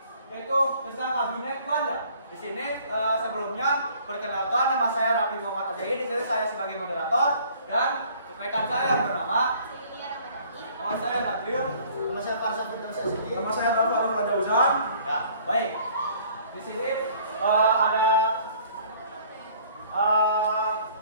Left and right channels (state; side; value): inverted; both; correlation -0.55